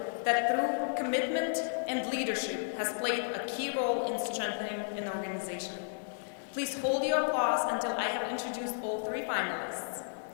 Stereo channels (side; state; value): right; silent; digital silence